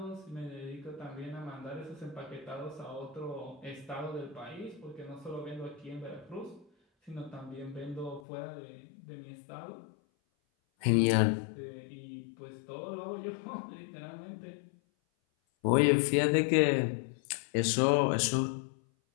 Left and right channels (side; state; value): right; drops out; at 8.2 s